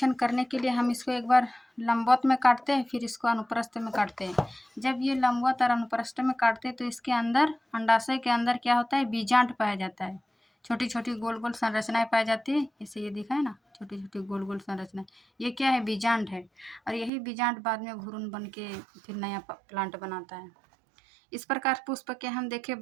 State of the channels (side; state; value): left; drops out; at 17.1 s